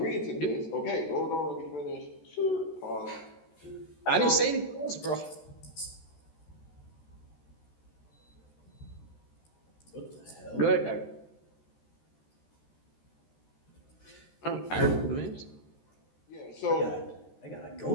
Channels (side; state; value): right; late; 13 ms